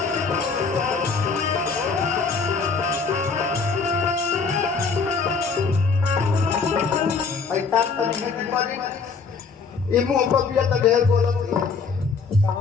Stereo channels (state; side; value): quieter; right; 5.0 dB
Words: तार तनी है की करी ई मुंह पर बिया त ढेर बोलत